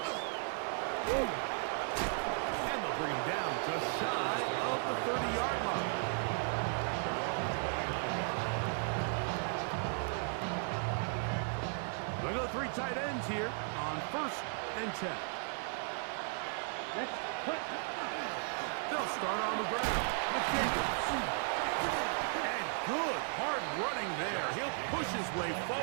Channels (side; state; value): left; silent; 54 dB below the other